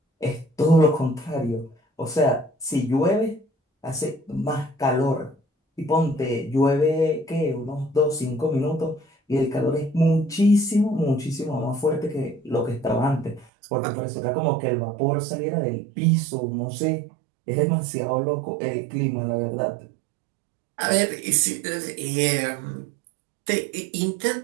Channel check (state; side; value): drops out; left; at 13.5 s